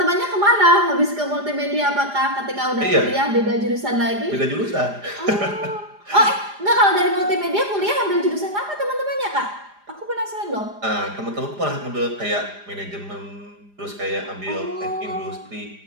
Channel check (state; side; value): late; left; 4.9 ms